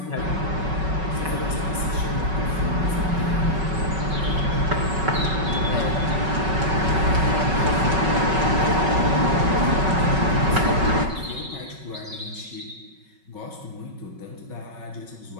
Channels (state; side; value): late; left; 5.3 ms